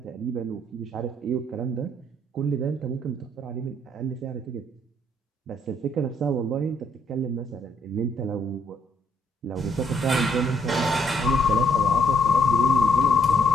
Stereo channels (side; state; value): both; normal; correlation 0.69